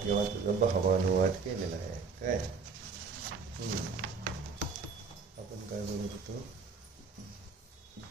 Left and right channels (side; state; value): left; quieter; 4.8 dB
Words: किंवा तुझा भावानुवाद केलेला आहे. काय आपण काय बोलत होतो?